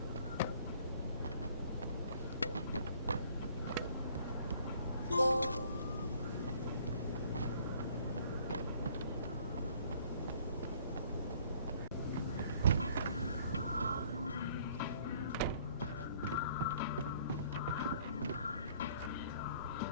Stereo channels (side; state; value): both; inverted; correlation -0.58